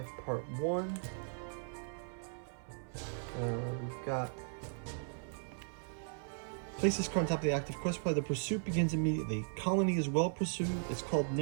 Part 1. We've got... Place this card on top of the active quest pile. The pursuit begins immediately. Colony is well pursued. It's called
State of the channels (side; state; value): left; silent; 53 dB below the other